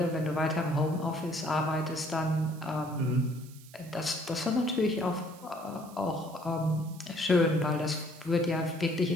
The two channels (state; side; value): noise; right; hiss, 22 dB below the sound